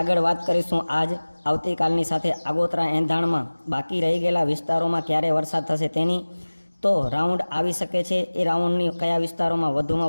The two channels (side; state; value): both; inverted; correlation -1.00